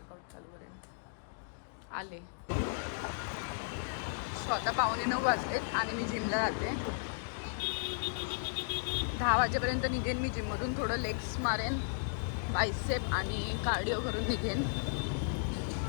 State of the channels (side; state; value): right; silent; digital silence